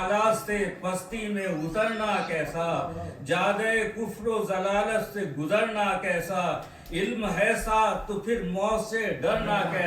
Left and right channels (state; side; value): identical; both; correlation 1.00